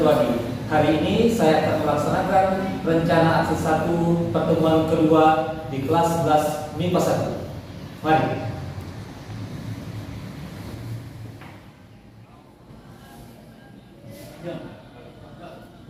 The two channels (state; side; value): identical; both; correlation 1.00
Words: Dwadi. Hari ini saya akan melaksanakan rencana aksi 1 pertemuan kedua di kelas 11 MIPA 1. Mari.